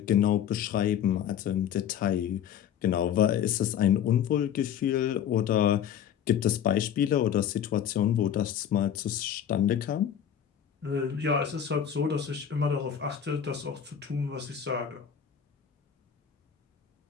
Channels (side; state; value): right; quieter; 9.1 dB